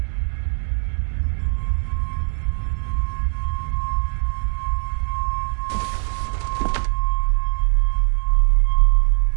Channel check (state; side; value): silent; left; digital silence